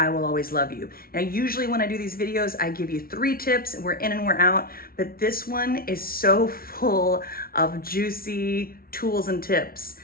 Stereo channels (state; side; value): late; right; 0.43 ms